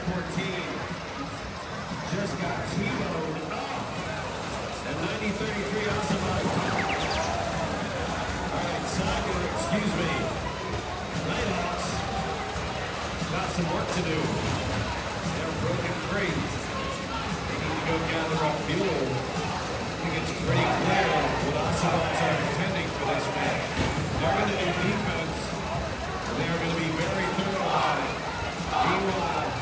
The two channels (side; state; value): both; identical; correlation 1.00